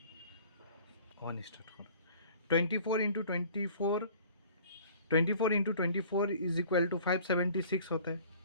वन स्टार्ट करो। 24 इंटू 24 इज इक्वल टू 576 होता है।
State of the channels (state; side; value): inverted; both; correlation -0.49